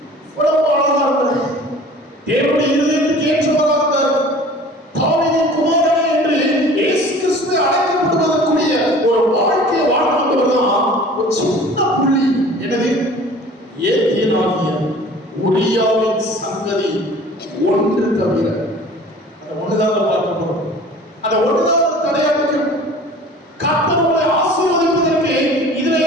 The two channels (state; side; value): normal; both; correlation 0.45